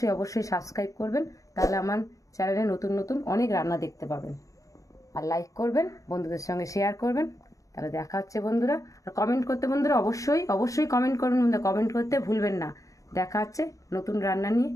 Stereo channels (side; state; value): right; late; 0.16 ms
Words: অবশ্যই সাবস্ক্রাইব করবেন, তাহলে আমার চ্যানেলে নতুন অনেক রান্না দেখতে পাবেন। আর লাইক করবেন, বন্ধুদের সঙ্গে শেয়ার করবেন। তাহলে দেখা হচ্ছে বন্ধুরা। আর কমেন্ট করতে বন্ধুরা অবশ্যই কমেন্ট করবেন, কমেন্ট করতে ভুলবেন না। দেখা হচ্ছে নতুন রান্না নিয়ে